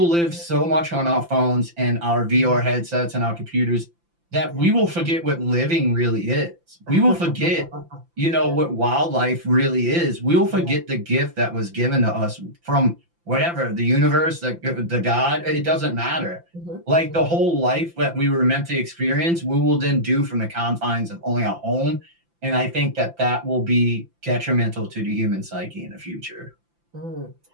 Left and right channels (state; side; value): late; left; 5.8 ms